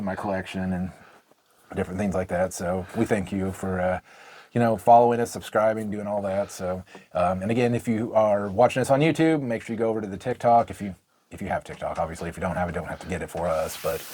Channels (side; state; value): both; identical; correlation 1.00